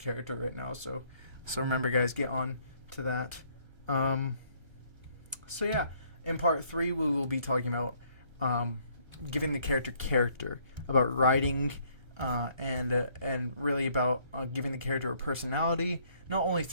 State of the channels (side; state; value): left; late; 1.3 ms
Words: right now. So remember, guys, get on to that. So yeah, in part 3 we will be talking about giving the character, about writing, and really about giving the character a personality, not only